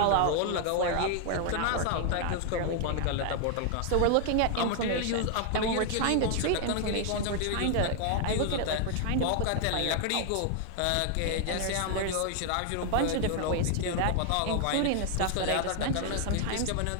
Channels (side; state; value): both; different; correlation 0.00